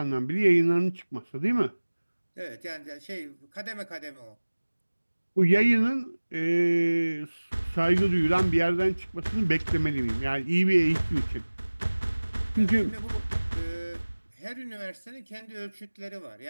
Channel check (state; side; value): inverted; both; correlation -1.00